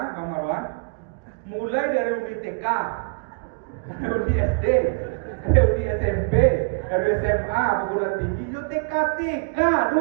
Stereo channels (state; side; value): quieter; left; 32.9 dB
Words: Bang Marwan? Mulai dari reuni TK, reuni SD, reuni SMP, reuni SMA, perguruan tinggi, yo TK